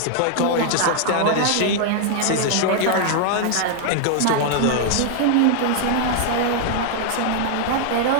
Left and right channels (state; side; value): different; both; correlation 0.00